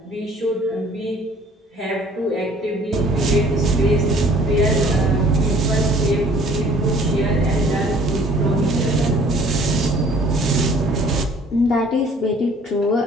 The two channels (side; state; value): both; normal; correlation 0.55